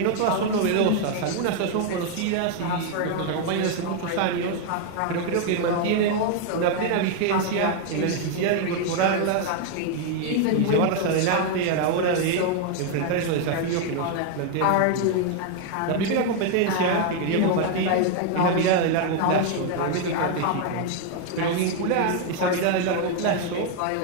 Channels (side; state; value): both; different; correlation 0.01